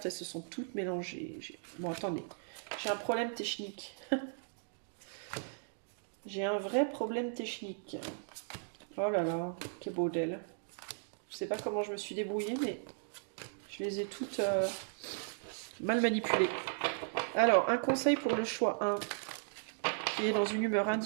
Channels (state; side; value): silent; left; digital silence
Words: elles se sont toutes mélangées. Bon, attendez, j'ai un problème technique. J'ai un vrai problème technique. Oh là là, quel beau d'elle. Je sais pas comment je me suis débrouillée, mais je les ai toutes mal manipulées. Alors, un conseil pour le choix 1, qui est dans une humeur